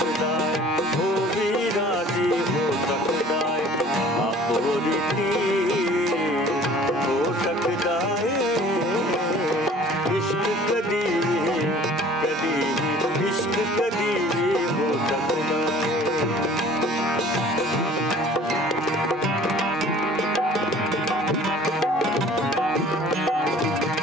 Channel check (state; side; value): normal; both; correlation 0.49